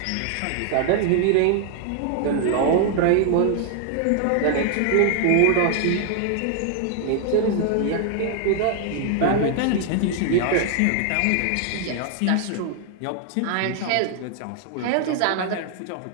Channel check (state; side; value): different; both; correlation 0.00